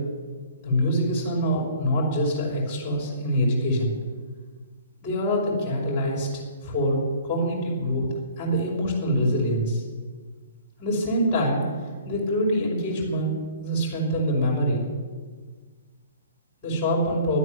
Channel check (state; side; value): inverted; both; correlation -0.51